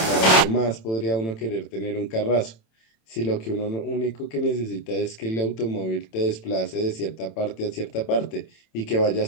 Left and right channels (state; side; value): late; right; 27 ms